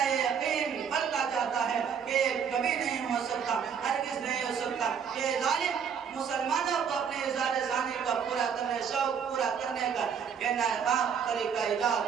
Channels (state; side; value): quieter; left; 7.2 dB